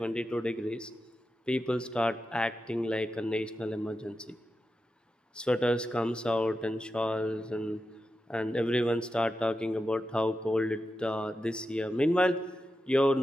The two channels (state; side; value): normal; both; correlation 0.90